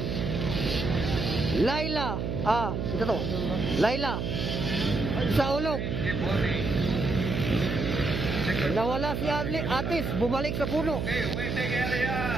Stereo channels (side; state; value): right; noise; hum, 2 dB below the sound